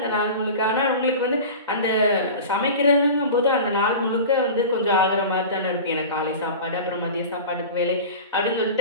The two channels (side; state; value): both; inverted; correlation -0.33